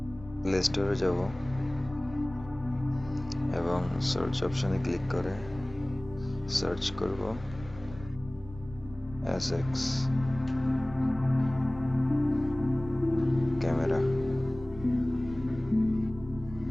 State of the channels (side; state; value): right; noise; rumble, 17 dB below the sound